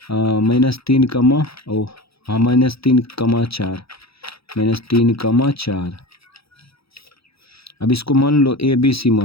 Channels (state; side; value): late; right; 0.77 ms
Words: -3, -3, -3, 4। अब इसको मान लो ABC